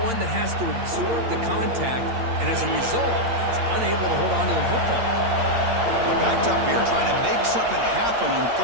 that has to absorb the contact, and as a result, he's unable to hold on to the football. They're backed up here, trying to make something happen on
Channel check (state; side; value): late; left; 8.7 ms